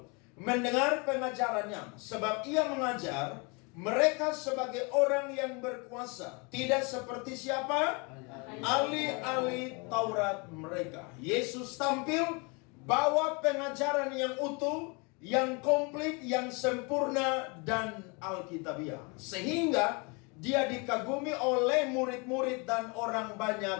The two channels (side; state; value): right; quieter; 31.0 dB